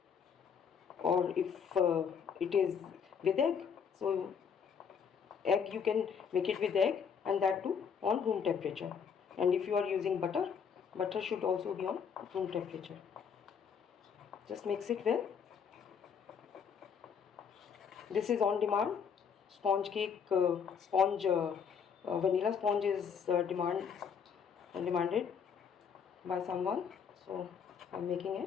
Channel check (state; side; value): quieter; right; 6.8 dB